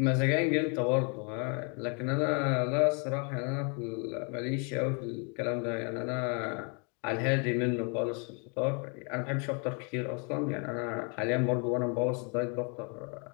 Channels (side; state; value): right; quieter; 37.4 dB